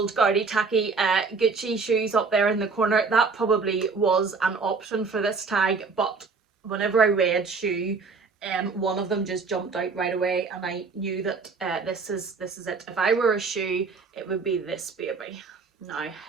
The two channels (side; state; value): left; quieter; 4.7 dB